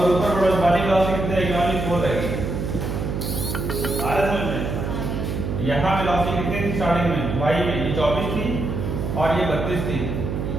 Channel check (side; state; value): right; noise; hum, 3 dB below the sound